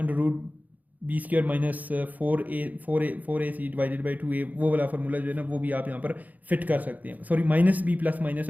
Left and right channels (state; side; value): late; left; 0.079 ms